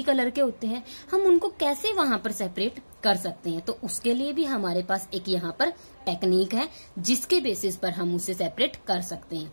कलर के होते हैं, हम उनको कैसे वहां पर सेपरेट कर सकते हैं? तो उसके लिए भी हमारे पास एक यहाँ पर टेक्निक है जिसके बेसिस पर हम उसे सेपरेट कर सकते हैं।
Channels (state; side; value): inverted; both; correlation -1.00